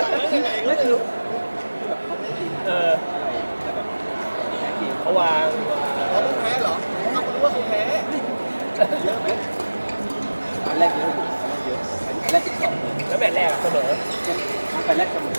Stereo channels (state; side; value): inverted; both; correlation -1.00